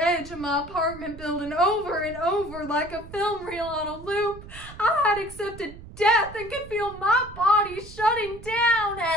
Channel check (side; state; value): right; noise; rumble, 16 dB below the sound